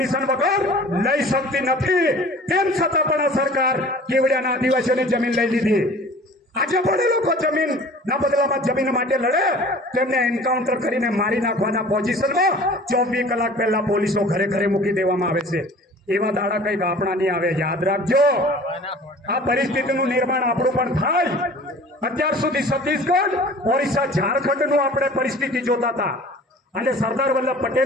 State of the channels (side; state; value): both; normal; correlation 0.45